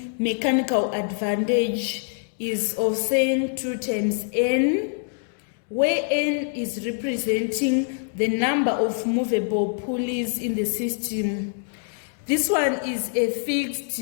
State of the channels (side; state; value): right; silent; 62 dB below the other